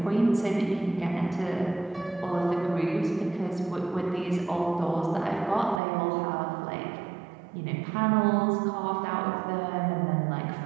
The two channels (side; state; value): left; drops out; at 5.8 s